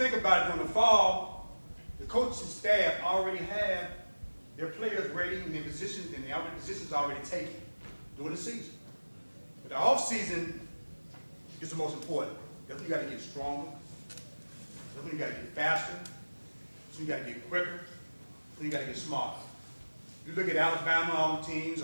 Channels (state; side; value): inverted; both; correlation -1.00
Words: about it, during the fall, the coaching staff already have their players ready in their positions, and their positions already taken during the season. But the off season is the most important. That's when you got to get stronger. That's when you got to get faster. That's when you got to get quicker. That's when you got to get smarter. You look at Alabama, all the teams,